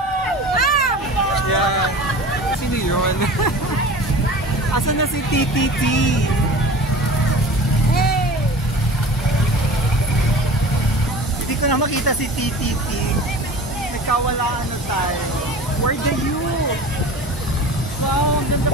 Yan. Sino yun? Asan na si TTT? Hindi ko na makita si TTT. Nagkawalaan na tayo. Where the youth? Wow, ang ganda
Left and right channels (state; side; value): normal; both; correlation 0.38